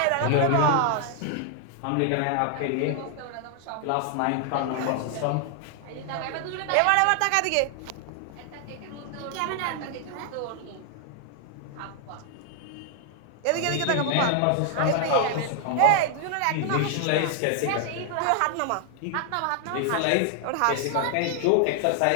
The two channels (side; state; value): both; different; correlation 0.00